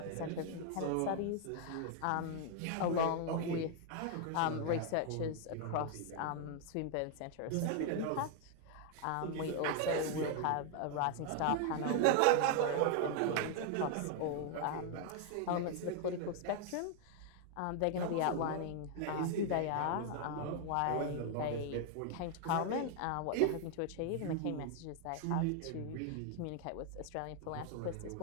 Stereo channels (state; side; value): different; both; correlation 0.00